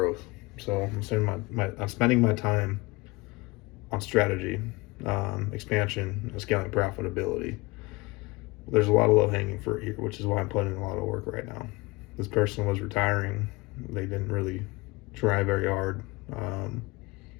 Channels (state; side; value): quieter; right; 23.5 dB